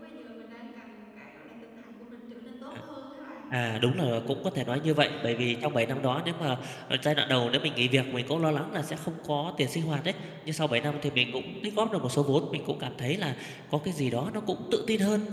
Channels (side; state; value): both; identical; correlation 1.00